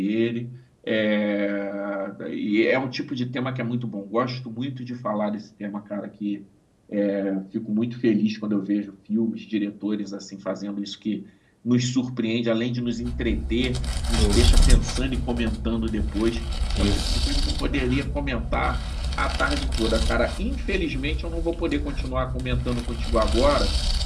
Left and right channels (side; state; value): both; identical; correlation 1.00